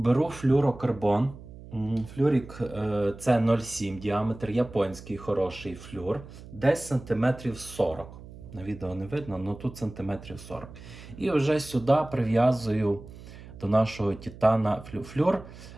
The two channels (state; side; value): noise; right; hum, 16 dB below the sound